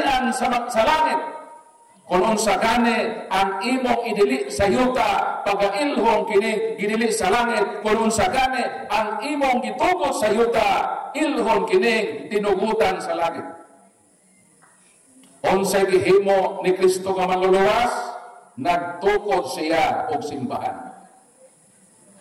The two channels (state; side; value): identical; both; correlation 1.00